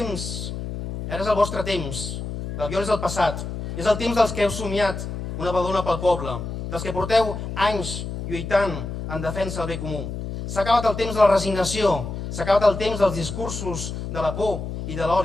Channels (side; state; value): left; noise; hum, 6 dB below the sound